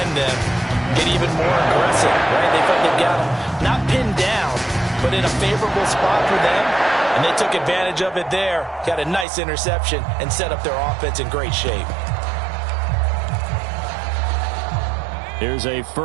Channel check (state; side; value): drops out; left; at 9.2 s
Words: them get even more aggressive, right? They felt they've got them not pinned down, but in a favorable spot for them. And they took advantage of it there, got a nice interception, and set up their offense in great shape. Here's a